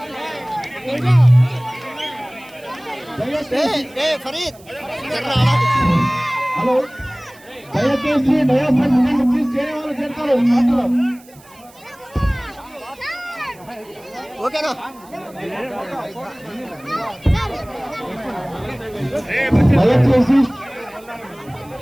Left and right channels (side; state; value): right; noise; hiss, 25 dB below the sound